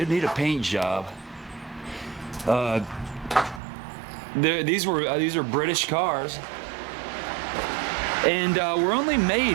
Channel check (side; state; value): left; drops out; at 3.6 s